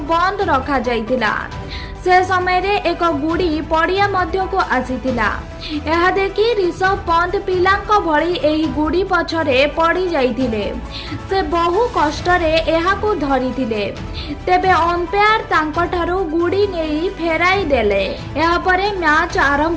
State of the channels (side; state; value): both; identical; correlation 1.00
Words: बंद रखा जाइतिला। से समय रे एक गुड़ी पड़िया मध्य को आसीतिला। यह देखि ऋषभ पंत पिलांक भली एही गुड़ी पछरे पड़ी जाइतिले। से बहु कष्टरे एहाकू धरिथिले, तेबे अंपायर तांकठारू गुड़ी नेई फेराई देले। एहा परे मैच